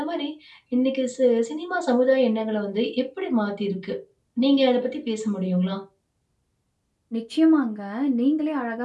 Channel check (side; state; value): both; identical; correlation 1.00